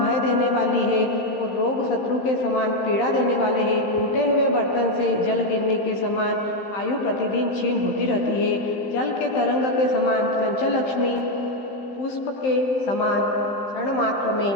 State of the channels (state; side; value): late; right; 15 ms